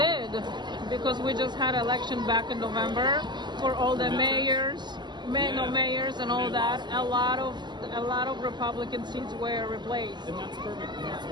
because we just had election back in November for all the mayors and all that. A lot of Republican seats were replaced. And that's perfect. And that's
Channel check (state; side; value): late; left; 0.21 ms